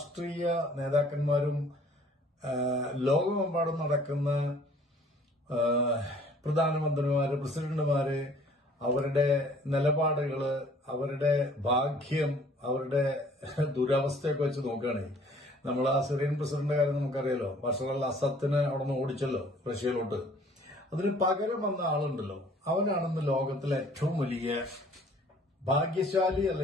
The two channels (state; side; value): normal; both; correlation 0.55